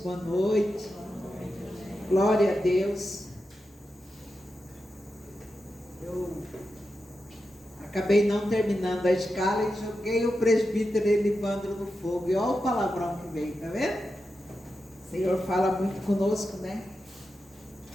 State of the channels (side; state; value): both; normal; correlation 0.89